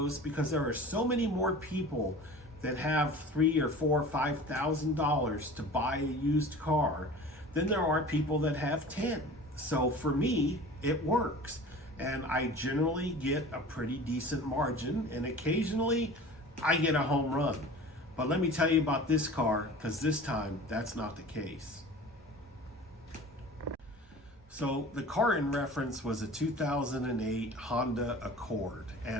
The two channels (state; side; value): normal; both; correlation 0.40